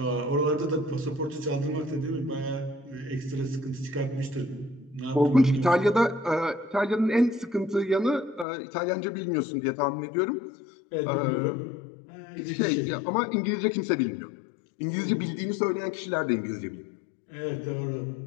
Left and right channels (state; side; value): drops out; right; at 8.5 s